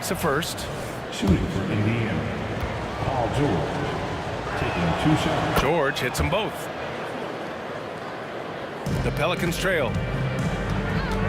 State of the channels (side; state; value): both; identical; correlation 1.00